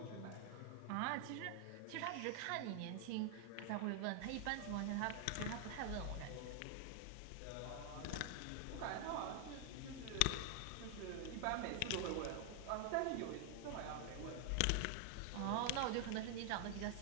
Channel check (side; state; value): both; different; correlation 0.00